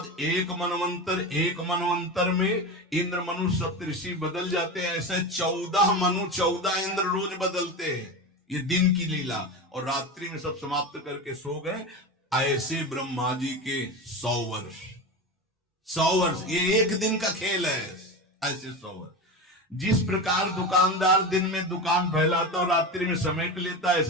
एक मनवंतर में इंद्र मनु सप्तऋषि बदल जाते हैं। ऐसे 14 मनु 14 इंद्र रोज बदलते हैं। ये दिन की लीला, और रात्रि में सब समाप्त करके सो गए। ऐसे ब्रह्मा जी के 100 वर्ष, 100 वर्ष, ये एक दिन का खेल है। ऐसे 100 वर्ष। जिस प्रकार दुकानदार दिन में दुकान फैलाता और रात्रि में समेट लेता,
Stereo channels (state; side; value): normal; both; correlation 0.24